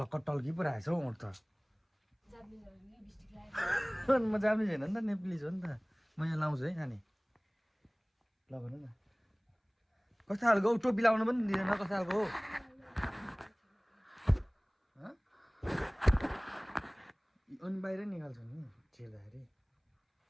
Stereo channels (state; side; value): identical; both; correlation 1.00